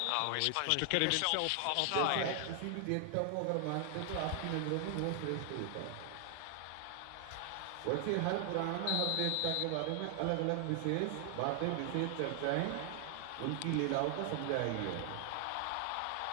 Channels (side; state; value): both; different; correlation 0.00